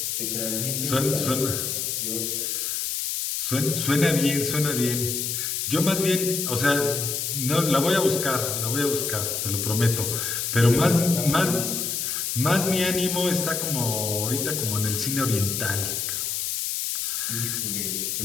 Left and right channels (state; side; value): noise; left; hiss, 1 dB below the sound